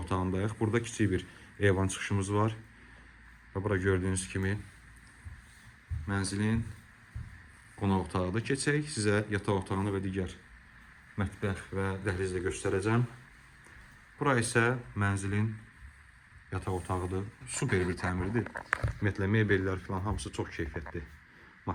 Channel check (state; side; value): identical; both; correlation 1.00